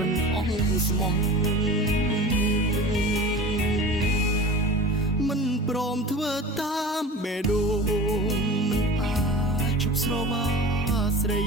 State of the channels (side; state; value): both; normal; correlation 0.35